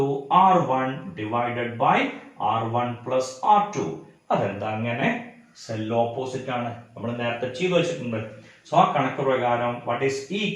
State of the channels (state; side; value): identical; both; correlation 1.00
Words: R1 divided by R1 plus R2. അതെന്താ അങ്ങനെ? സെൽ ഓപ്പോസിറ്റ് ആണ്, നമ്മൾ നേരത്തെ ചെയ്തു വെച്ചിട്ടുണ്ട്. സോ ആ കണക്ക് പ്രകാരം വാട്ട് ഈസ് E